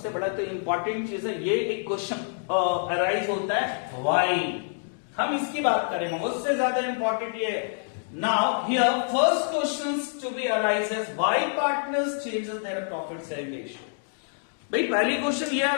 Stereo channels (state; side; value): silent; right; digital silence